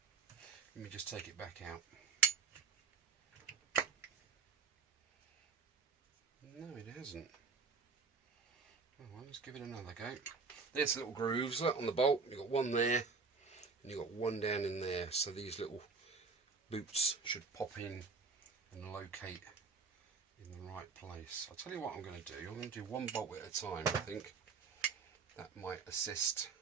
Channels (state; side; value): quieter; left; 4.7 dB